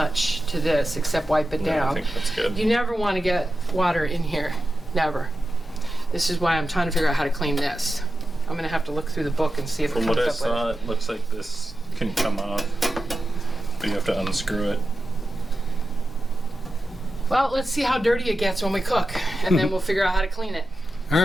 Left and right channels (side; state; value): both; normal; correlation 0.91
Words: to this except wipe it Yeah, I down. think that's good. You never want to get water in here. Never. This is why I'm trying to figure out how to clean this. I'm going to have to look through the book and see if From it what comes I up saw, with it looks like this can come off, but you have to unscrew it. Well, let's see how dirty it gets when we cook, and then we'll figure out how to clean it. All